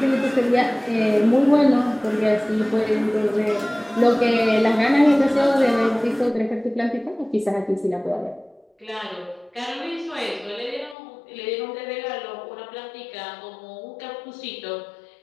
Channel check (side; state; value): right; drops out; at 11.0 s